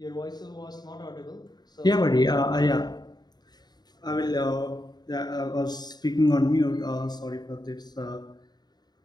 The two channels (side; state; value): right; late; 0.20 ms